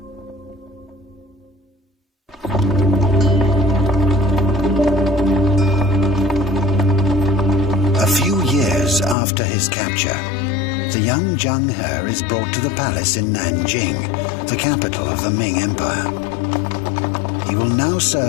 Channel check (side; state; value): right; drops out; at 9.2 s